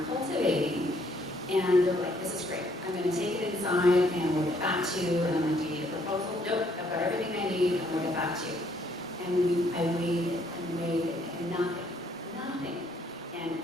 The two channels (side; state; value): both; normal; correlation 0.67